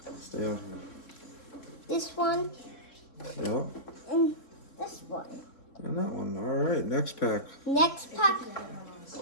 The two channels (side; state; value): right; late; 3.7 ms